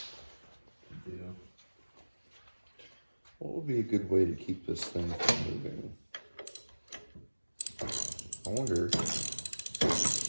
What would be a good way to keep this thing from moving? I wonder.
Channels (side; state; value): both; inverted; correlation -1.00